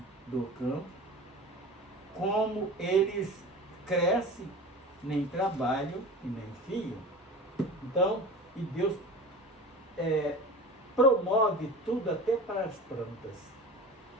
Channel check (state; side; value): normal; both; correlation 0.35